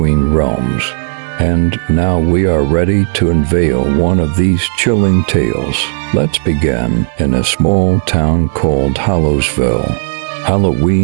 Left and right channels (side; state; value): left; silent; 71 dB below the other